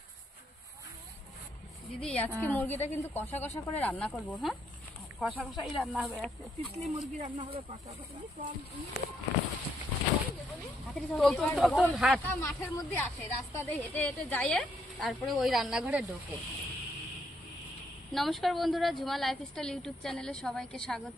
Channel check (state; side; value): normal; both; correlation 0.74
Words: দিদি আজকে মুরগিটা কিন্তু কষা কষা করে রান্না করবো। হ্যাঁ, কষা কষাই রান্না হবে, তিতলি মুরগি রান্না হবে কষা কষা। মাঠের মধ্যে আসে, রাস্তা দিয়ে হেঁটে হেঁটে যায়, তারপরে ওই রান্নাঘরে ঢোকে। নমস্কার বন্ধুরা, ঝুমা লাইফস্টাইল ইউটিউব চ্যানেলে সবাইকে